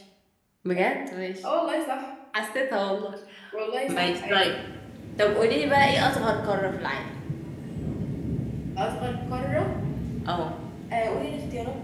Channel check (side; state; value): both; identical; correlation 1.00